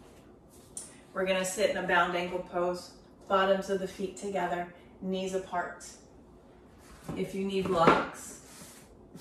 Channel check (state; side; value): identical; both; correlation 1.00